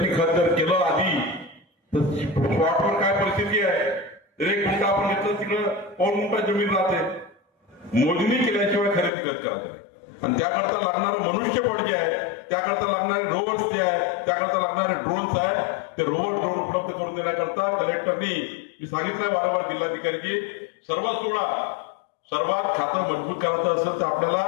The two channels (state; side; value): drops out; right; at 9.1 s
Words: खत जर केलं आधी तर स्पॉटवर काय परिस्थिती आहे, 1 गुंठा आपण घेतलं तिकडं 2 गुंठा जमीन राहते. मोजणी केल्याशिवाय खरेदी खत करायचं आणि त्याकरता लागणारं मनुष्यबळ जे आहे, त्याकरता लागणारे रोवर्स जे आहे, त्याकरता लागणारे ड्रोन्स आहे, ते ड्रोन उपलब्ध करून देण्याकरता कलेक्टरनी मी सांगितलं वारंवार जिल्हाधिकारी की सर्वात खातं मजबूत करायचं असेल तर आपल्याला